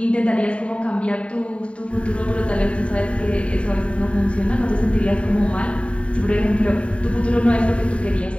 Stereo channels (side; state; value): right; late; 0.061 ms